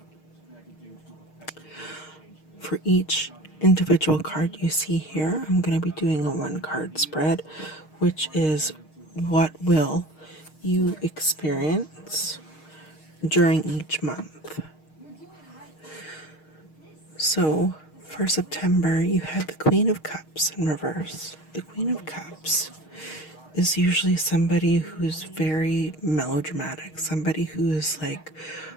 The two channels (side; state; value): right; late; 6.5 ms